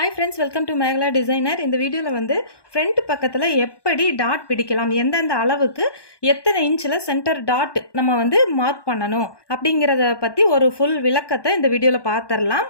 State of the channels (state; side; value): late; right; 1.2 ms